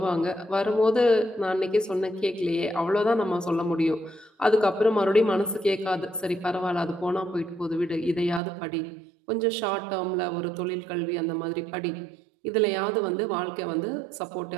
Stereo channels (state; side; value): drops out; left; at 8.4 s